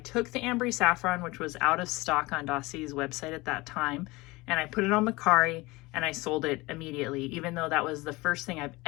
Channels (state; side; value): quieter; right; 22.1 dB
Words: the Ambry Saffron, which was out of stock on Dossier's website at that time, and I put it on Macari, and I sold it immediately, even though that was the first thing I've